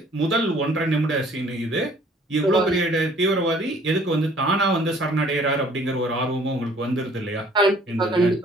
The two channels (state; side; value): normal; both; correlation 0.56